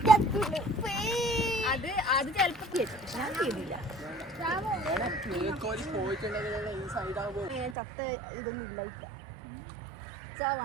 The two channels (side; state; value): left; drops out; at 7.8 s